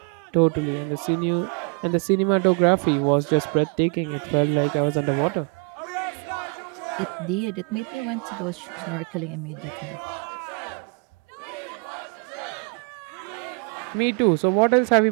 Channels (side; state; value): left; quieter; 36.6 dB